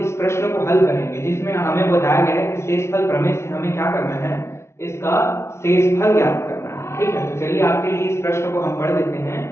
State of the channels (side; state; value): right; late; 0.13 ms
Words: प्रश्न को हल करेंगे जिसमें हमें बताया गया है कि शेषफल प्रमेय से हमें क्या करना है, इसका शेषफल ज्ञात करना है। ठीक है, तो चलिए आपके लिए इस प्रश्न को हम पढ़ देते हैं।